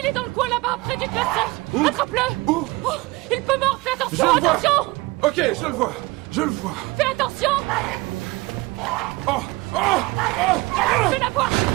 est dans le coin là-bas, près du classeur. Attrape-le. Où? Oh, il peut mordre, fais attention, Je le vois. attention. Ok, je le vois. Fais attention. Fais la voir.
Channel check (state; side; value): quieter; left; 22.2 dB